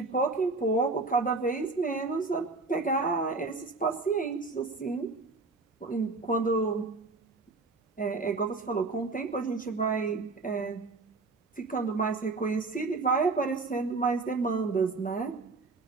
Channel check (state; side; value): quieter; left; 3.7 dB